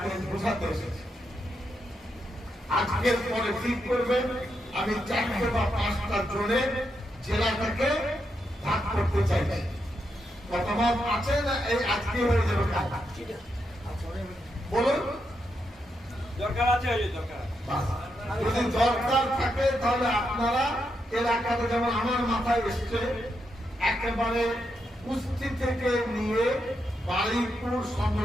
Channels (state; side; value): normal; both; correlation 0.83